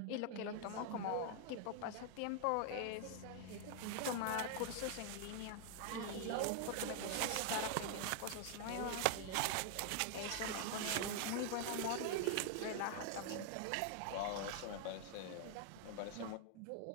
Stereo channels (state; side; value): different; both; correlation 0.00